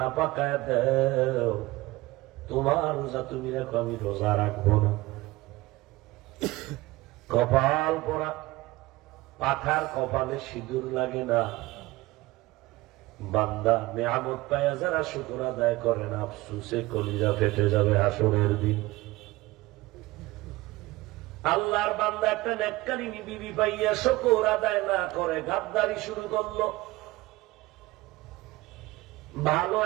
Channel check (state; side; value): quieter; left; 19.7 dB